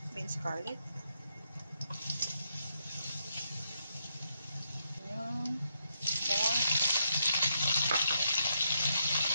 Minced garlic. Yung pork.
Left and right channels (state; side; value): inverted; both; correlation -0.79